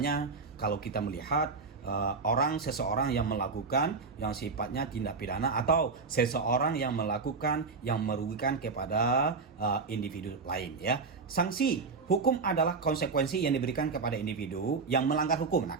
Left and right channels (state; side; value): quieter; left; 4.5 dB